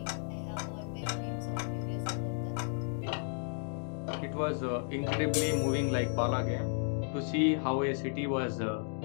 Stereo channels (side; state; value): right; silent; 55 dB below the other